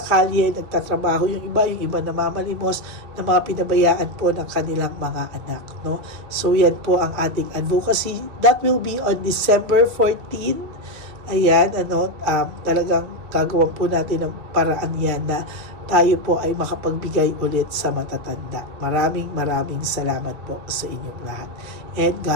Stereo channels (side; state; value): left; late; 2.8 ms